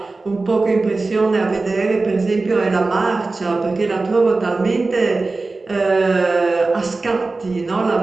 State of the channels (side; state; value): left; quieter; 3.5 dB